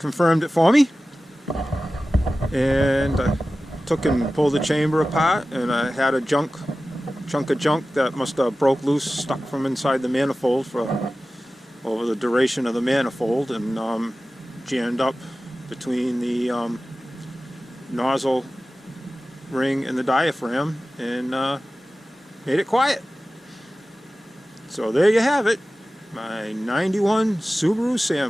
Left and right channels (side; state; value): both; normal; correlation 0.95